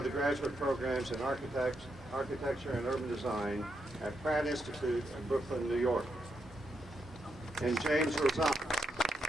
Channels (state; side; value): normal; both; correlation 0.82